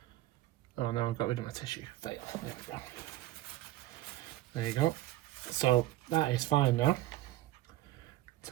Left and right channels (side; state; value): left; quieter; 15.5 dB